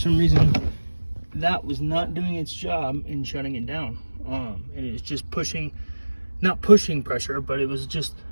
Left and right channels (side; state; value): both; inverted; correlation -1.00